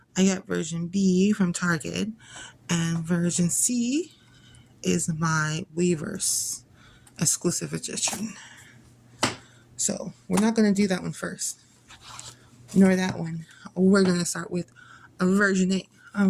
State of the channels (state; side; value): identical; both; correlation 1.00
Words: I got version B from Target, and version C is my Weverse exclusive edition. So we're not going to do that one first, nor that one. We're going to start with a version A